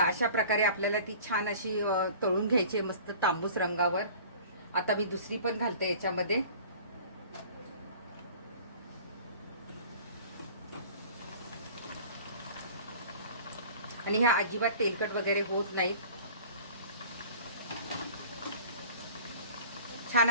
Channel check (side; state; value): both; inverted; correlation -0.45